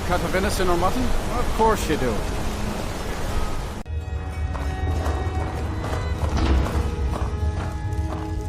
cut of venison or mutton? Of course you do.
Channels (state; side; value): identical; both; correlation 1.00